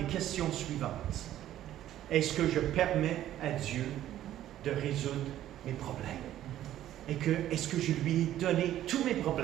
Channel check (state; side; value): quieter; left; 12.6 dB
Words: questions suivantes. Est-ce que je permets à Dieu de résoudre mes problèmes? Est-ce que je lui ai donné tous mes